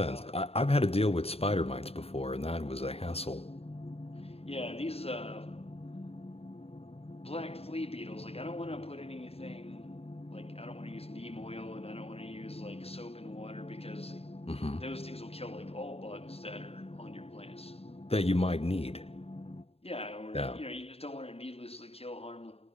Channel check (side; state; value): right; late; 0.29 ms